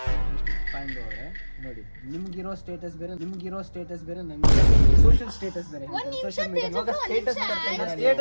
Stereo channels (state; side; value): inverted; both; correlation -1.00